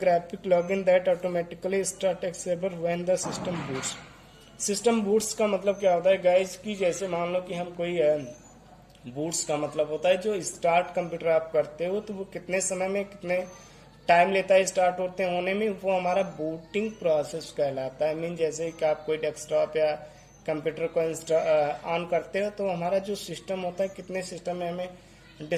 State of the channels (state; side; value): identical; both; correlation 1.00